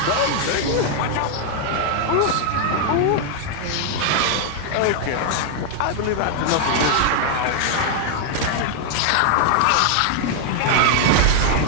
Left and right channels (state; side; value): different; both; correlation 0.00